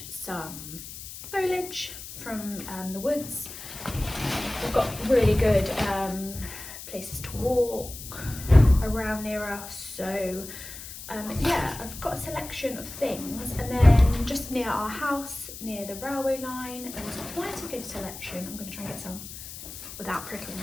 some foliage from the woods. We've got really good places to walk around near us. So yeah, I've got a selection of things, and then just near our house, near the railway line, there's quite a good selection. I'm going to try and get some without prickling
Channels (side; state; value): left; noise; hiss, 12 dB below the sound